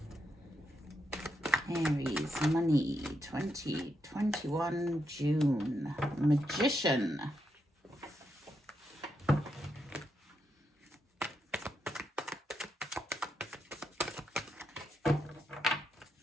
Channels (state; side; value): normal; both; correlation 0.82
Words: Aries, money, 2021 June. Magician.